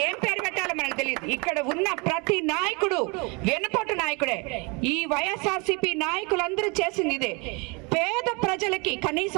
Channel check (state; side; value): quieter; left; 29.9 dB